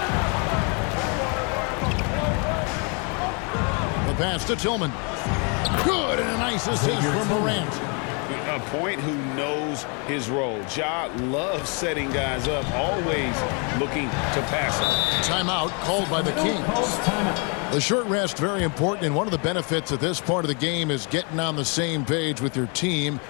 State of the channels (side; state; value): right; quieter; 35.0 dB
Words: The pass to Tillman. Good, and a nice assist from Morant. A point who knows his role. Ja loves setting guys up, always looking to pass them. Timeout called by the Kings. The short rest, very important, and one of the benefits of this part of the game is getting on the same page with your team